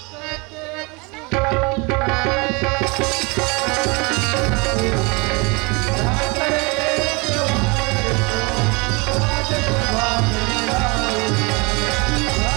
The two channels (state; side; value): quieter; left; 28.6 dB